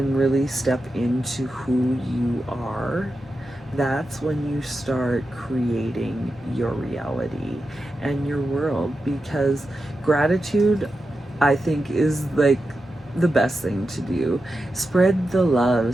really step into who you are, that's when you start creating your reality and your world. Because gratitude, I think, is like the best thing to do. Spread the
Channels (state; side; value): normal; both; correlation 0.90